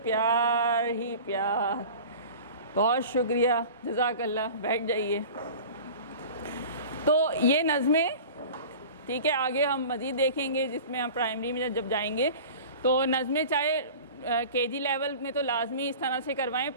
प्यार ही प्यार। बहुत शुक्रिया, जज़ाकल्लाह। बैठ जाइए। तो ये नज़में, ठीक है, आगे हम मज़ीद देखेंगे जिसमें हम प्राइमरी में जब जाएंगे तो नज़में चाहे केजी लेवल में तो लाजमी इस तरह से करवाएं,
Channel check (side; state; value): both; inverted; correlation -0.39